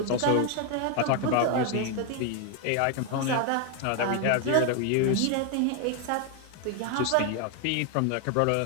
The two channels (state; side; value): different; both; correlation 0.01